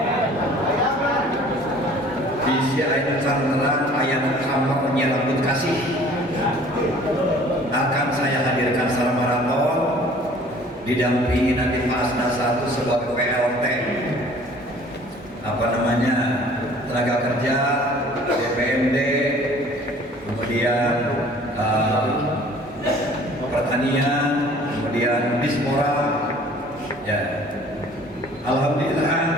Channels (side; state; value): both; normal; correlation 0.51